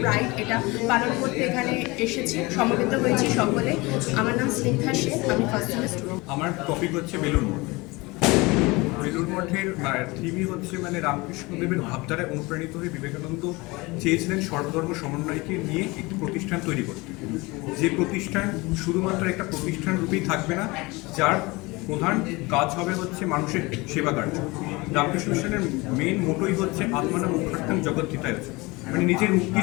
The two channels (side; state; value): right; quieter; 23.8 dB